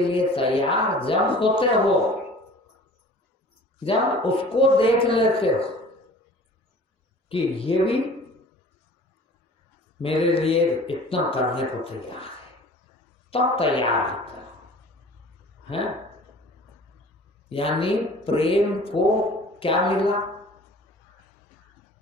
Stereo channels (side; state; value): both; normal; correlation 0.45